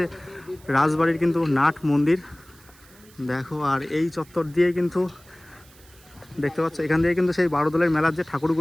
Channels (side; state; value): right; noise; hiss, 26 dB below the sound